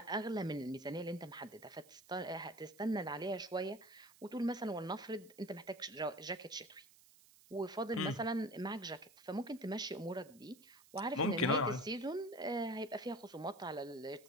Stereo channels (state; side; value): noise; right; hiss, 24 dB below the sound